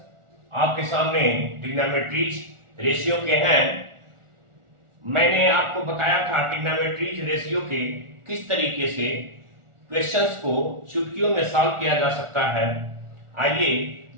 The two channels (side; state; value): left; late; 1.4 ms